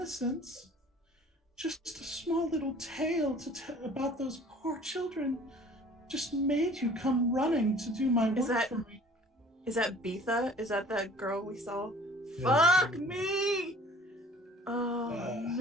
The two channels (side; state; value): both; normal; correlation 0.50